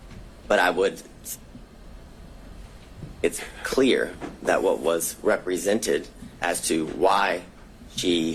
But it's clear that what was represented as to why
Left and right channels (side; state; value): both; identical; correlation 1.00